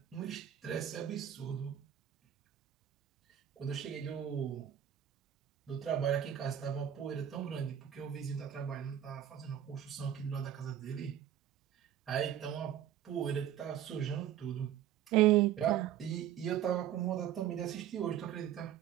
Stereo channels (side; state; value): left; quieter; 10.4 dB